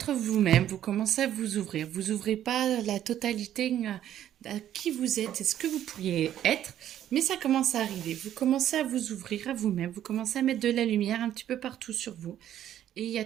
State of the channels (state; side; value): quieter; left; 11.3 dB